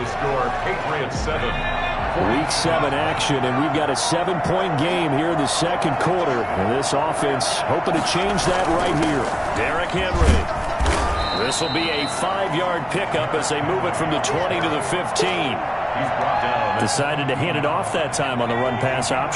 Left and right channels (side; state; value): both; identical; correlation 1.00